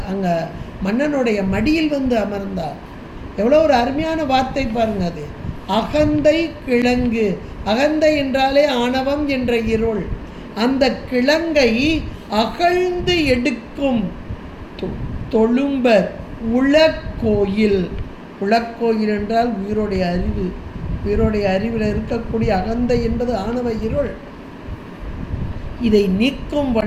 அங்கே மன்னனுடைய மடியில் வந்து அமர்ந்தார். எவ்வளோ ஒரு அருமையான வார்த்தை பாருங்க. அது அகந்தை கிழங்கு. அகந்தை என்றாலே ஆணவம் என்ற இருள். அந்த கிழங்கை அகழ்ந்து எடுக்கும் தொழும்பர் உலக்கோயில். உலக்கோயில் என்றால் உயிருடைய அறிவு. உயிருடைய அறிவில் இருக்கக்கூடிய அகந்தை என்பது ஆணவ இருள். இதை நீக்கும்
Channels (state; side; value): identical; both; correlation 1.00